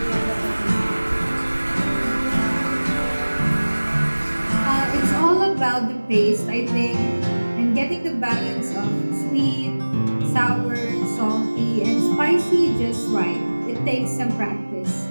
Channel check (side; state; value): both; inverted; correlation -1.00